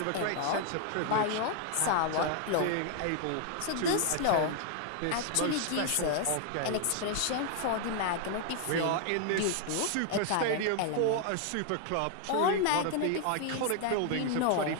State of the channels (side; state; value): both; different; correlation 0.00